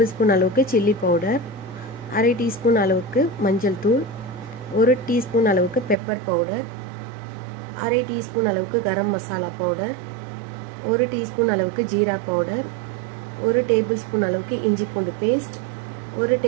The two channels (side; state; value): left; drops out; at 6.0 s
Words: ஸ்பூன் அளவுக்கு சில்லி பவுடர், 1/2 டீஸ்பூன் அளவுக்கு மஞ்சள் தூள், 1 டீஸ்பூன் அளவுக்கு பெப்பர் பவுடர், 1/2 டீஸ்பூன் அளவுக்கு கரம் மசாலா பவுடர், 1 டீஸ்பூன் அளவுக்கு ஜீரா பவுடர், 1 டேபிள் ஸ்பூன் அளவுக்கு இஞ்சி பூண்டு பேஸ்ட், 1